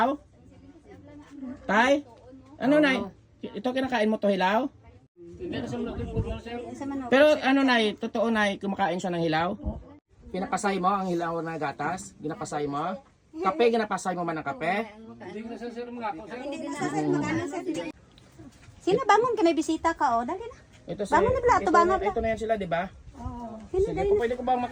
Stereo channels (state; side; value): identical; both; correlation 1.00